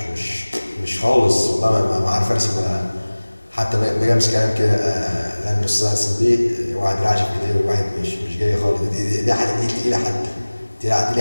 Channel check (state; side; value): inverted; both; correlation -1.00